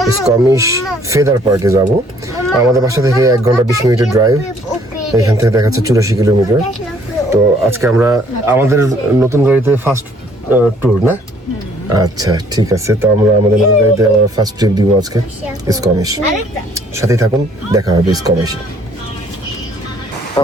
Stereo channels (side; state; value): both; normal; correlation 0.61